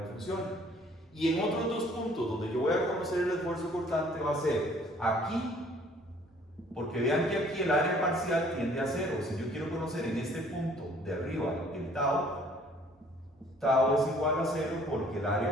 funciona. Y en otros dos puntos donde yo voy a conocer el esfuerzo cortante va a ser aquí, porque vean que aquí el área parcial tiende a cero. Si yo quiero conocer en este punto de arriba el tau, tau es igual a cero porque el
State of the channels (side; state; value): both; normal; correlation 0.57